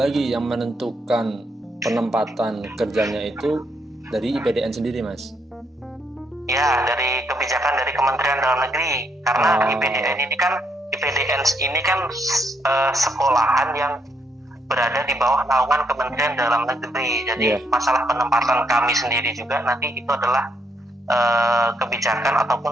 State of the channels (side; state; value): both; normal; correlation 0.75